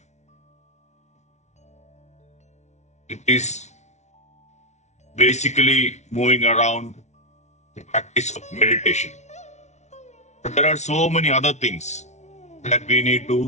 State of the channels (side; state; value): right; late; 0.32 ms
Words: it is basically moving around the practice of meditation. But there are so many other things that we need